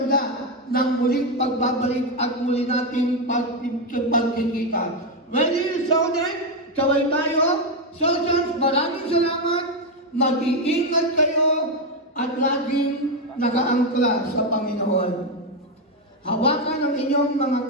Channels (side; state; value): both; normal; correlation 0.06